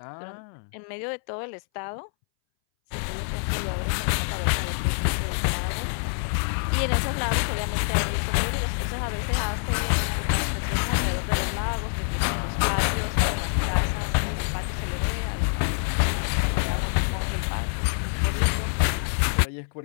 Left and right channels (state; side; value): silent; right; 61 dB below the other